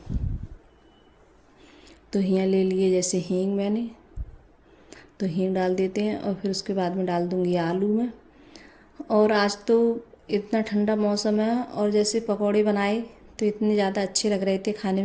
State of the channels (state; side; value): identical; both; correlation 1.00